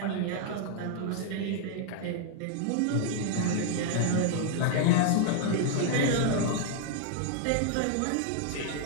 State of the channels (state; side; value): different; both; correlation 0.00